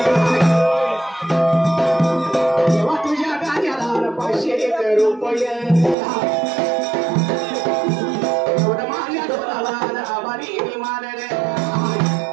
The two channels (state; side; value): drops out; left; at 6.0 s